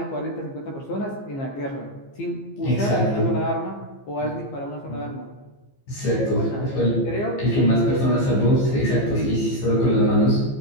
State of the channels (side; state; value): right; late; 15 ms